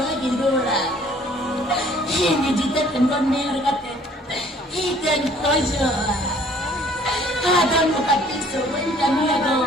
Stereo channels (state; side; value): normal; both; correlation 0.57